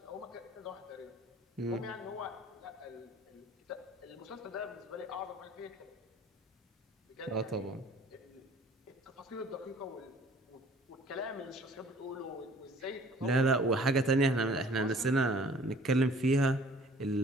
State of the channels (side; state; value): both; normal; correlation 0.52